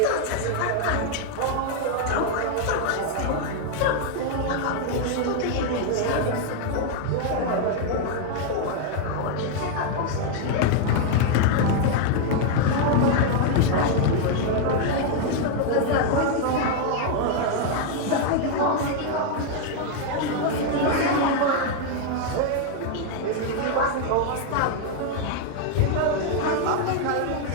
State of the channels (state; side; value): different; both; correlation 0.00